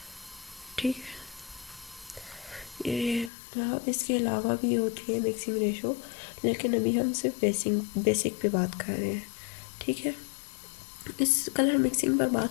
ठीक है, ये इसके अलावा भी होती है मिक्सिंग रेशो, लेकिन अभी हम सिर्फ बेसिक पे बात कर रहे हैं। ठीक है, इस कलर मिक्सिंग पर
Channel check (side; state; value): right; drops out; at 3.3 s